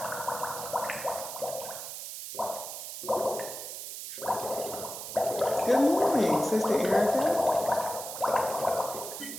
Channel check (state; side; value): noise; right; hiss, 8 dB below the sound